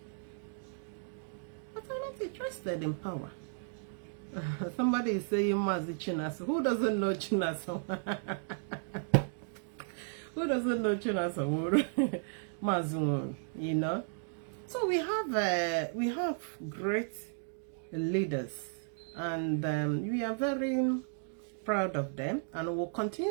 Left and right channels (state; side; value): silent; left; digital silence